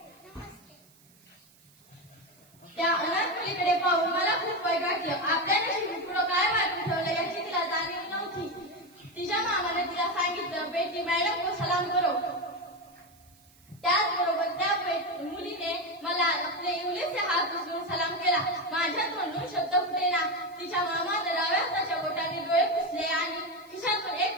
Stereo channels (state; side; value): noise; right; hiss, 29 dB below the sound